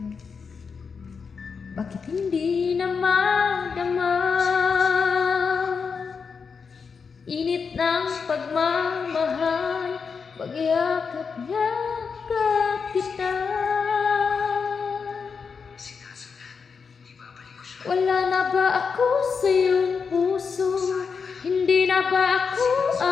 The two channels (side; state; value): right; quieter; 5.6 dB